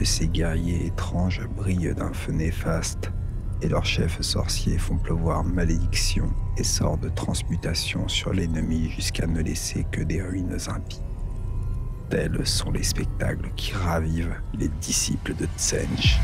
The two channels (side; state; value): both; identical; correlation 1.00